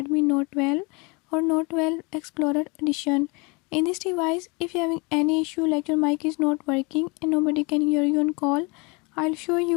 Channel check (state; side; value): quieter; right; 29.0 dB